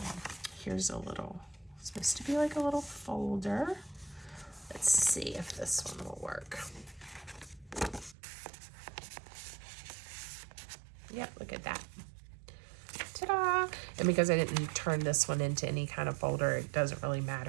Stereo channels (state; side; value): drops out; left; at 8.2 s